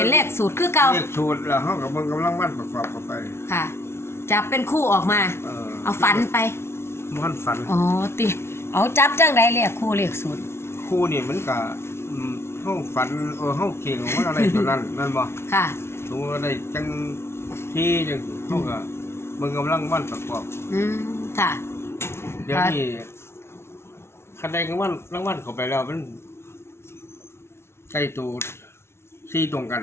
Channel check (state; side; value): late; right; 0.12 ms